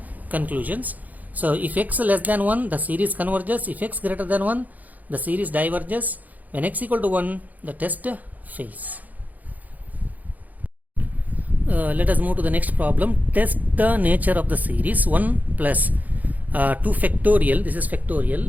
conclusions. So if x less than 1, the series converges. If x greater than 1, the series diverges. When x equal to 1, the test fails. Let us move to the next problem. Test the nature of the series 1 plus 2 factorial, this is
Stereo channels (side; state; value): left; late; 0.080 ms